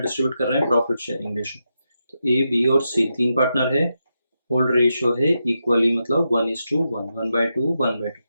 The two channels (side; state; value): both; inverted; correlation -0.86